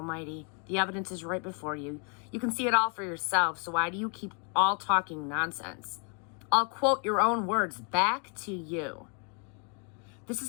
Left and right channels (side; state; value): right; quieter; 37.7 dB